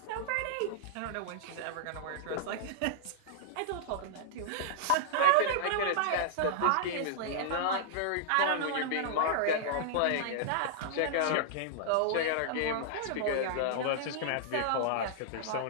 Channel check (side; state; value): both; different; correlation -0.01